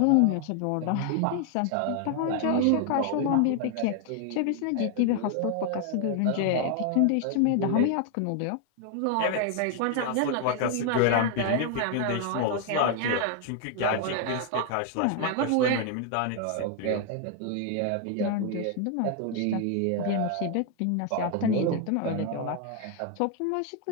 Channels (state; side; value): different; both; correlation 0.00